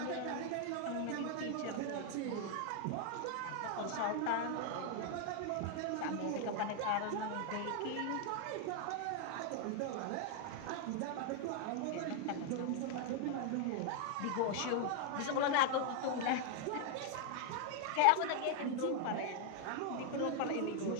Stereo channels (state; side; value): different; both; correlation 0.00